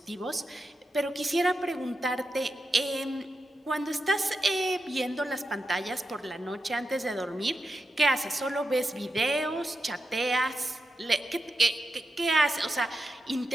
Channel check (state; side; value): normal; both; correlation 0.88